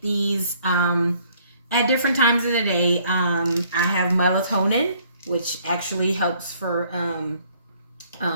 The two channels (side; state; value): both; inverted; correlation -0.62